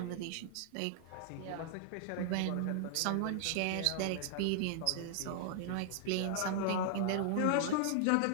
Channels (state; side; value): different; both; correlation -0.01